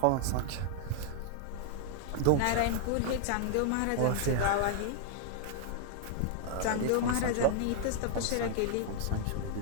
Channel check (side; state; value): both; different; correlation 0.00